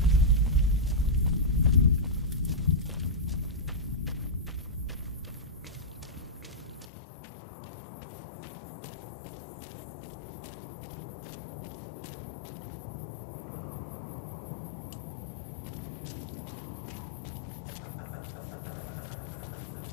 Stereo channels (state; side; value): drops out; right; at 6.9 s